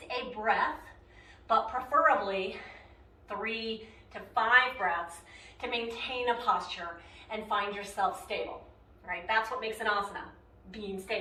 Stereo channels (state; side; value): identical; both; correlation 1.00